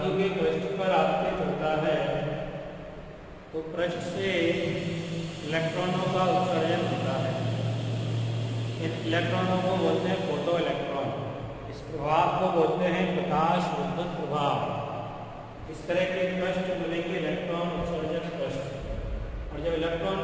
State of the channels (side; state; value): both; identical; correlation 1.00